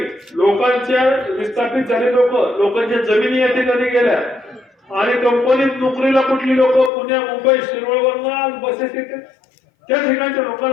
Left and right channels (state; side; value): drops out; right; at 6.9 s